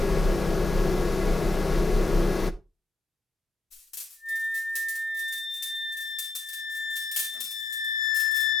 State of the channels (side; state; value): right; quieter; 3.1 dB